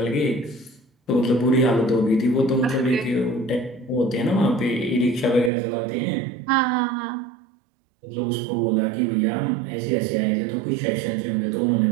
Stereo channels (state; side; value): drops out; left; at 5.5 s